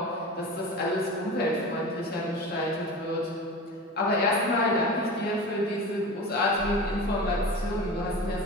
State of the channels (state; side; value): normal; both; correlation 0.31